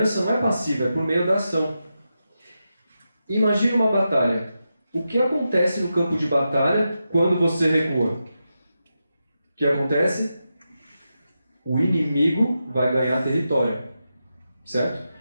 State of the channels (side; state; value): both; inverted; correlation -0.88